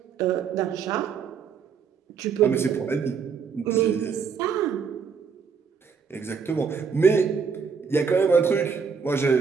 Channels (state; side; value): quieter; left; 6.0 dB